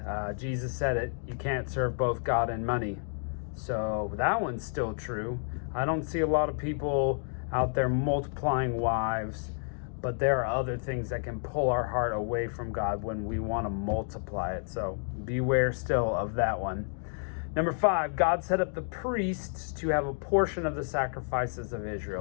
Jesus said it, you can't serve both God and money. So that one's still true. I don't see a lot of people out there multiplying wives, but there are other things that can pull our heart away from God when we want to multiply it. So beware still of that one. Number 5, God set up the priests to have a portion of the sacrifices of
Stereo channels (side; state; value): right; silent; 58 dB below the other